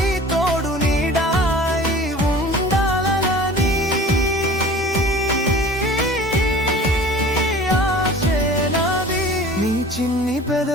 తోడు నీడాయి ఉండాలని ఆశే నాది. నీ చిన్ని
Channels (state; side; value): normal; both; correlation 0.43